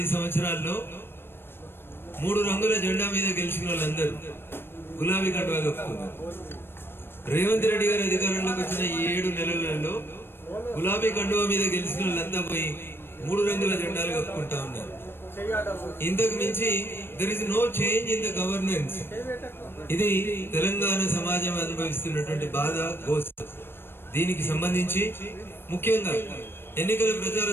సంవత్సరాల్లో 3 రంగుల జెండా మీద గెలిచిన వాళ్ళందరూ గులాబీ కండువా కప్పుకున్నారు. రేవంత్ రెడ్డి గారి అధికారంలోకి వచ్చిన ఈ 7 నెలలలో గులాబీ కండువా మీద గెలిచిన వాళ్ళంతా పోయి 3 రంగుల జెండాలు కప్పుకుంటా ఉన్నారు. ఇంతకు మించి there is no change in the governance. ఇది తెలంగాణ సమాజం అనుభవిస్తున్నటువంటి బాధ, గోస. దీనికి సంబంధించి ముఖ్యంగా ఎన్నికల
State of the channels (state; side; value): late; right; 0.11 ms